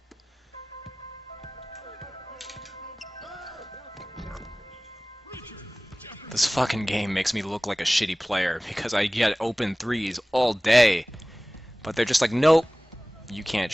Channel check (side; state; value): both; normal; correlation 0.98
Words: This fucking game makes me look like a shitty player because I get open threes all day. But they're just like, nope, you can't